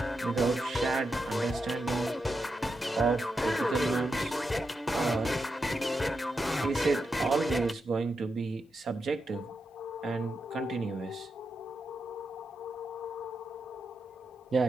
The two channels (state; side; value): normal; both; correlation 0.86